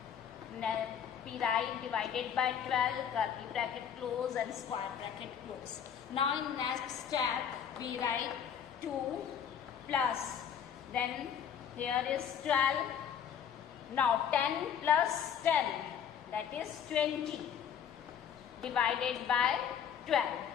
Then we write divided by 12, curly bracket close and square bracket close. Now in next step, we write 2 plus. Then here is 12. Now 10 plus 10, that is 20, divided by 12.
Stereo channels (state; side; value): quieter; right; 8.3 dB